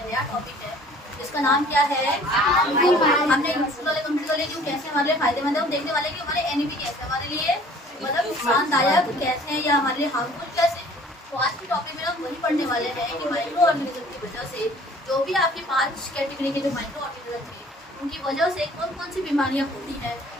नया टॉपिक है जिसका नाम क्या है, हमने यूजफुल वाले कंप्लीट कर लिए जो कैसे हमारे लिए फायदेमंद है। हम देखने वाले कि हमारे एनिमी कैसे हमारे लिए मतलब नुकसानदायक कैसे हैं या हमारे लिए हार्मफुल कैसे। तो आज के टॉपिक में हम वही पढ़ने वाले हैं कि माइक्रो ऑर्गेनिज्म की वजह से जो भी आपके 5 कैटेगरी के जो माइक्रो ऑर्गेनिज्म थे उनकी वजह से कौन कौन सी बीमारियां होती हैं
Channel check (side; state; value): both; normal; correlation 0.52